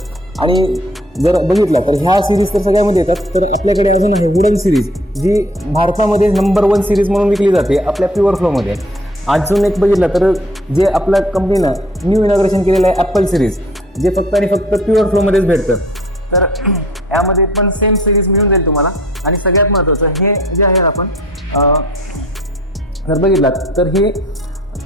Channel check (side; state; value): both; normal; correlation 0.54